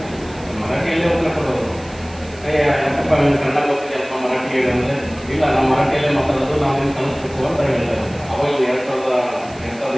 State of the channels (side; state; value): right; noise; hiss, 22 dB below the sound